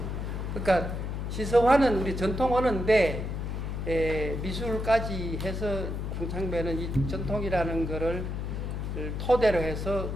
그러니까 시서화는 우리 전통 언어인데 미술까지 해서 황창배는 이 전통이라는 거를 토대로 해서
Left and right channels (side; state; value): left; noise; hum, 3 dB below the sound